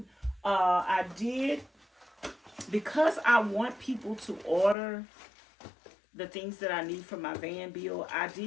I did, because I want people to order the things that I need for my van build, I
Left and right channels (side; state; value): right; drops out; at 4.8 s